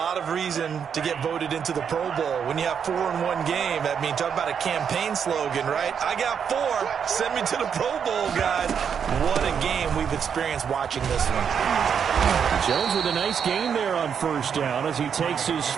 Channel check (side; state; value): left; quieter; 7.4 dB